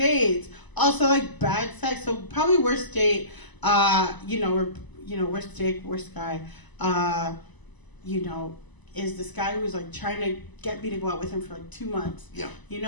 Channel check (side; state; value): right; late; 1.0 ms